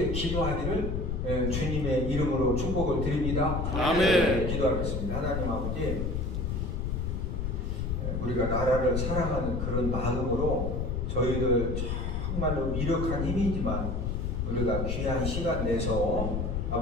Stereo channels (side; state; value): left; noise; rumble, 1 dB below the sound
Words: 기도하기를 주님의 이름으로 축복을 드립니다. 아멘. 기도하겠습니다. 하나님 아버지, 우리가 나라를 사랑하는 그런 마음으로 저희들 정말로 미력한 힘이지만 우리가 귀한 시간 내서